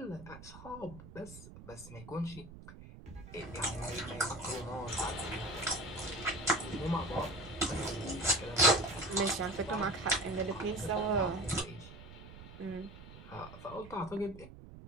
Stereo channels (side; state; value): right; noise; rumble, 16 dB below the sound